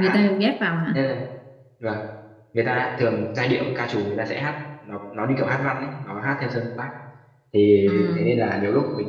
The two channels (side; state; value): both; identical; correlation 1.00